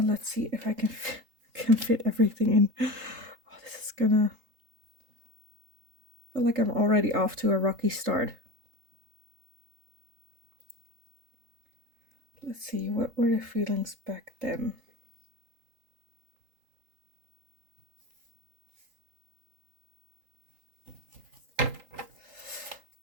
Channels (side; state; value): left; late; 3.8 ms